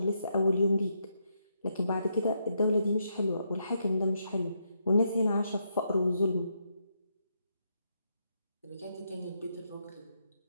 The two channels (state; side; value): inverted; both; correlation -0.79